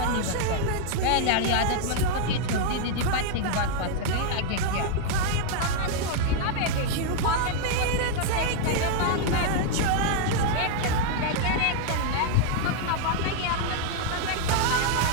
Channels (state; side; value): different; both; correlation 0.00